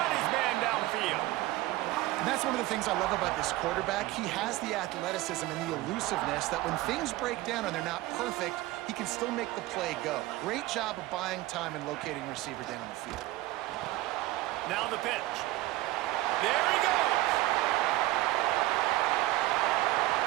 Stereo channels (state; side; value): quieter; left; 17.7 dB